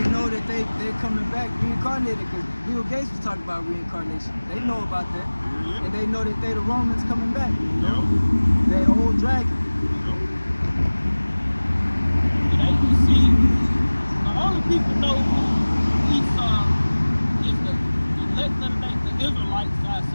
know that they coming back reincarnated, because Bill Gates was talking about reincarnation. They know about that. Yeah. And they know that they the Romans coming back. Yup. That old dragon. Yup. You see, the only people know who Esau is the elect of the Israelites, I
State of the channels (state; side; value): inverted; both; correlation -1.00